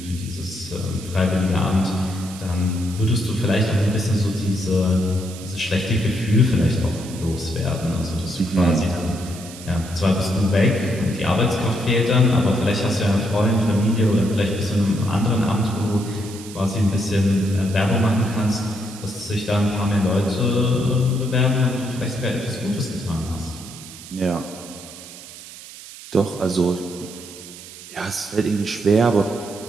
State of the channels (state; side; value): noise; right; hiss, 16 dB below the sound